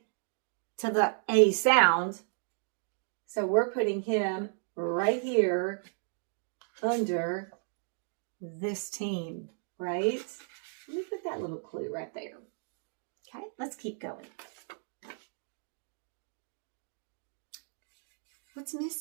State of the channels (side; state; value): left; silent; digital silence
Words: to the A sound. So we're putting him right here under this team, right? Let me put that little clue right there. Okay, let's keep going. What's